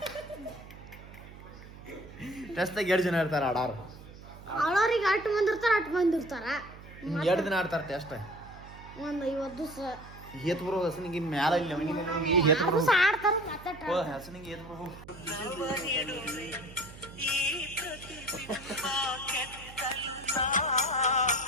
ಟೆಸ್ಟ್ದಾಗ 2 ಜನ ಇರ್ತಾರ ಆಡಾರ. ಆಳೋರಿಗೆ 8 ಮಂದಿ ಇರ್ತಾರ, 8 ಮಂದಿ ಇರ್ತಾರ. 2 ದಿನ ಆಡ್ತಾರ ಟೆಸ್ಟ್. ಒಂದು 50 ದಿವಸ ಹೇತ್ ಬರೋ ಹಸನಿಗೆ ಮ್ಯಾಲ ಇಲ್ಲ ಹೇತ್ ಬರೋ ಆಡ್ತಾರ. ಮತ್ತೆ ಹಸನಿಗೆ ಹೇತ್ ಬರೋ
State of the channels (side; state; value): right; noise; hum, 17 dB below the sound